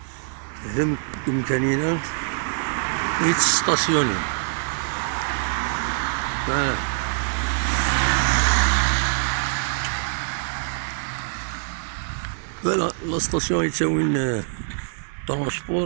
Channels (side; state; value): left; silent; digital silence